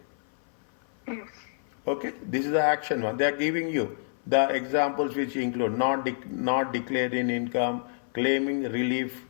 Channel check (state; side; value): silent; right; 57 dB below the other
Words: Yes. Okay, this is the action one. They are giving you the examples which include not declaring income, claiming relief